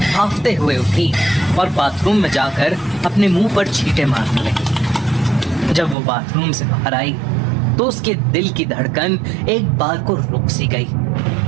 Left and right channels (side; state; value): left; drops out; at 6.0 s